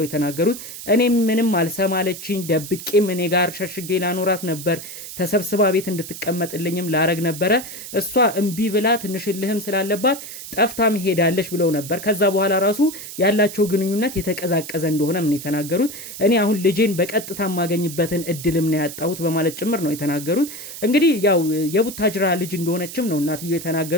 የተናገሩት። እኔም ምንም አልሰማለችኝ፣ ደብቄም እኔ ጋር ሸሽጌ ላኖራት ነበር፣ ተሰብስባ ቤት እንድትቀመጥልኝም ላረግ ነበረ። እሷ እምቢ ብላ ትንሽልህም ስላለባት ጠፍታም ሄዳለች ብለው ነበር። ከዛ በኋላ ራሱ ያላቸው ግንኙነት የተቀዛቀዘ እንደሆነ ምን የተናገሩት። እኔ አሁን ልጄን በቀጥታ የማገኝበትን እድልም ነው ያጣሁት በማለት ጭምር ነው የተናገሩት። እንግዲህ ያው የቡታጅራ ልጅ እንደሆነችም ነው እናትየው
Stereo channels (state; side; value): noise; right; hiss, 11 dB below the sound